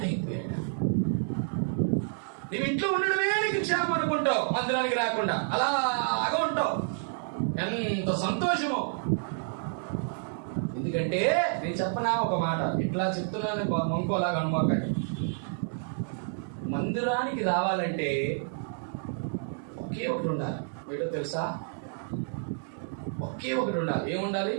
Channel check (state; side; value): silent; left; digital silence